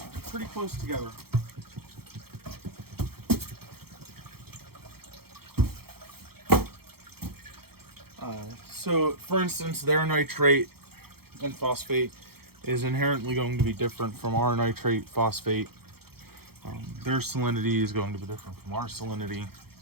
pretty close together. So for instance, their nitrate and phosphate is inherently going to be different from our nitrate phosphate. Their salinity is going to be different from our salinity.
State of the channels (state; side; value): late; left; 0.95 ms